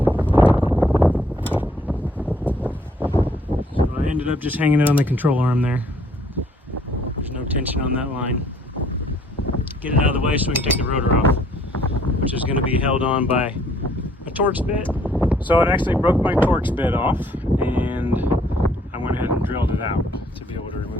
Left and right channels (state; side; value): normal; both; correlation 0.63